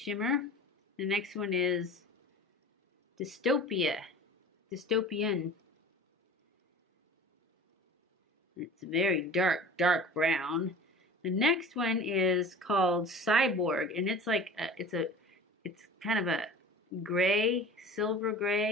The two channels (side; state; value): both; normal; correlation 0.40